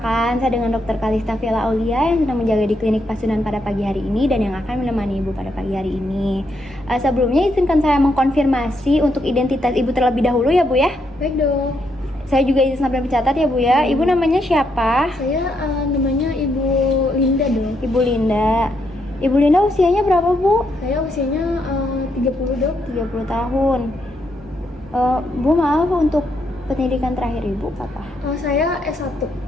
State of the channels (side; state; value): both; normal; correlation 0.78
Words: saya dengan Dr. Kalista Villa Aulia yang sedang menjaga di klinik Pasundan pada pagi hari ini dan yang akan menemani Ibu pada pagi hari ini. Sebelumnya izinkan saya mengkonfirmasi untuk identitas Ibu terlebih dahulu ya, Bu ya. Baik, Dok. Saya juga izin sampai mencatat ya, Bu ya. Ibu namanya siapa? Saya namanya Ibu Linda, Dok. Ibu Linda. Ibu Linda usianya berapa, Bu? Saya usianya 30, Dok. 30 tahun. Bu, maaf, untuk pendidikan terakhir Ibu apa? Saya S1.